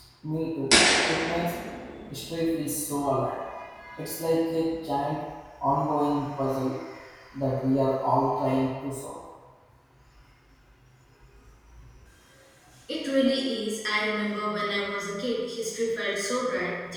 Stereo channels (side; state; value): both; identical; correlation 1.00